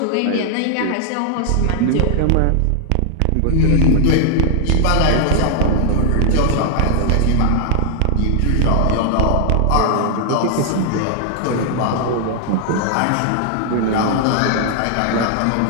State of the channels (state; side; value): different; both; correlation 0.00